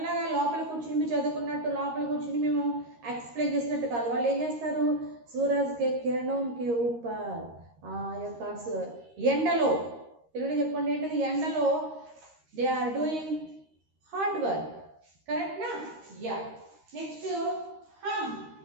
లోపల కూర్చుని చదువుకున్నట్టు లోపల కూర్చుని మేము ఎక్స్ప్లెయిన్ చేసినట్టు కాదు. వాళ్ళు ఏం చేస్తారు? సూరజ్ కే కిరణం కే ఊపర్ యొక్క ఎండలో, తెలుగులో చెప్పండి ఏంటది? ఎండలో they are doing hard work. Correct నా? యా. నెక్స్ట్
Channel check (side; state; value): left; late; 13 ms